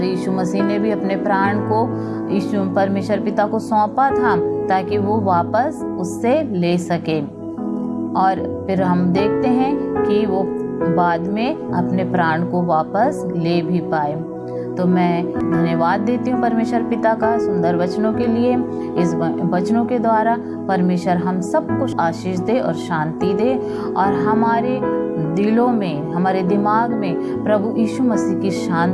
यीशु मसीह ने भी अपने प्राण को यीशु परमेश्वर पिता को सौंपा था ताकि वो वापस उससे ले सके। और फिर हम देखते हैं कि वो बाद में अपने प्राण को वापस ले भी पाए। तो मैं धन्यवाद देती हूँ परमेश्वर पिता का सुंदर वचनों के लिए। इस वचनों के द्वारा परमेश्वर हम सब कुछ आशीष दे और शांति दे, और हमारे दिलों में, हमारे दिमाग में प्रभु यीशु मसीह की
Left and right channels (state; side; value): identical; both; correlation 1.00